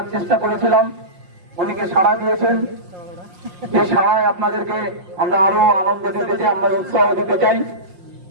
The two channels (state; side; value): late; left; 5.6 ms